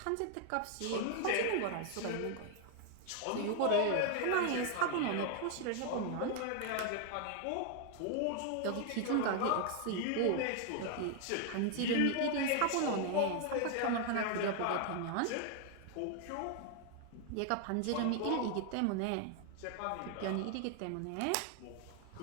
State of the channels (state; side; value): different; both; correlation 0.00